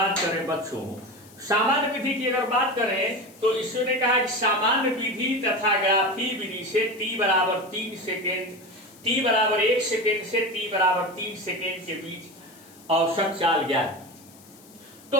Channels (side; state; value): left; noise; hiss, 24 dB below the sound